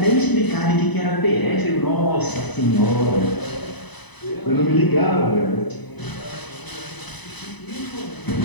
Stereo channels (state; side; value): late; right; 1.0 ms